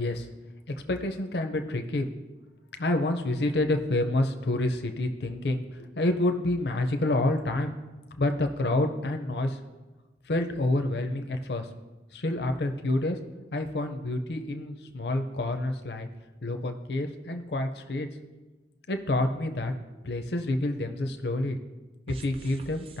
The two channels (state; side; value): normal; both; correlation 0.65